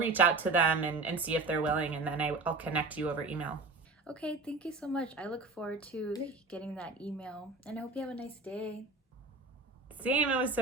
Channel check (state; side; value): quieter; left; 3.6 dB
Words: out to them and see if they're willing, and then I'll connect you over email. Okay, thank you so much. I look forward to getting that email, and I hope you have a nice day. Same, it was